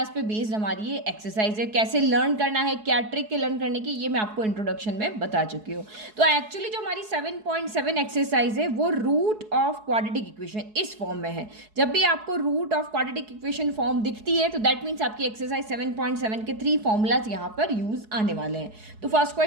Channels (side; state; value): left; late; 4.7 ms